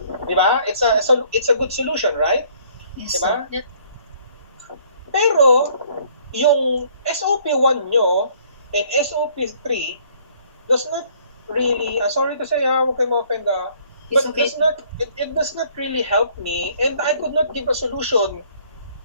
di ba? It's a good solution, right? Yes, Di ba? sir. Pero yung SOP1 nyo and SOP3 does not really, sorry to say, huwag kayo ma-offend, It's but okay. it does not really help me, and I could not give a solution.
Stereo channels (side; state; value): both; inverted; correlation -0.60